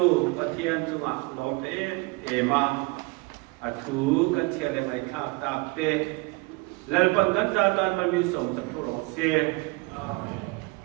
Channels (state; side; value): quieter; left; 26.1 dB